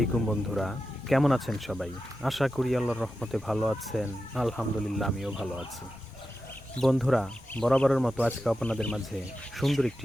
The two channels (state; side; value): normal; both; correlation 0.91